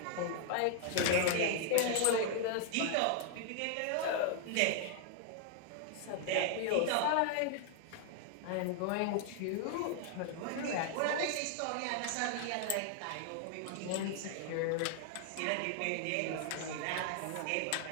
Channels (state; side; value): different; both; correlation 0.00